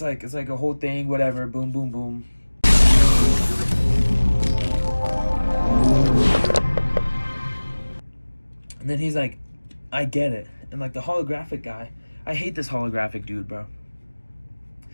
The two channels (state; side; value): inverted; both; correlation -1.00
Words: like a whole thing, whatever, boom, boom, boom. And then he's like, I get it. And like the holographic guy, I hate this holographic dude, bro.